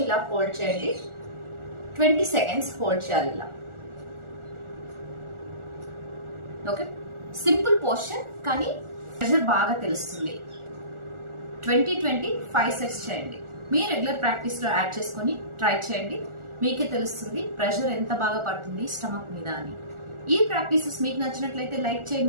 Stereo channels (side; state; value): left; late; 1.4 ms